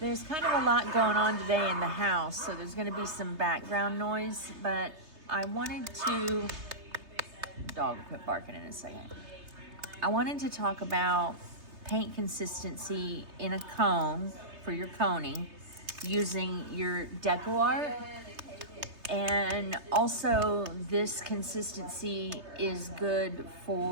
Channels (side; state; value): left; late; 3.3 ms